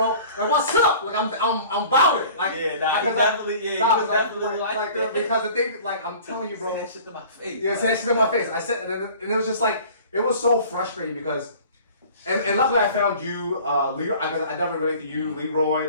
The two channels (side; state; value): both; inverted; correlation -0.46